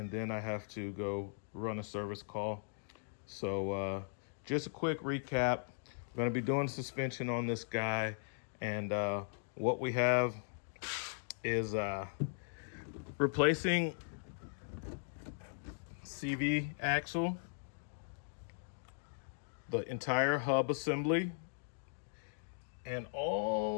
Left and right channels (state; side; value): silent; right; digital silence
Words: then I have to go run a service call. So just a quick recap. We're going to be doing suspension on this guy, and what we have is replacing CV axle, the entire hub assembly, and